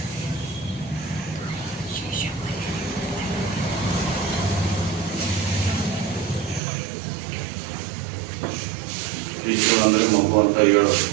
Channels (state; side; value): drops out; left; at 6.6 s